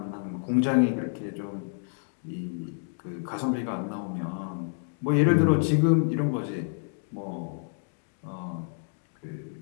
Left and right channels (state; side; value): silent; right; digital silence